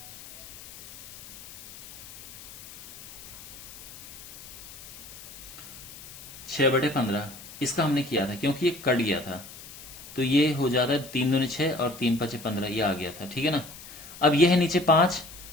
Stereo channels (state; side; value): noise; left; hiss, 15 dB below the sound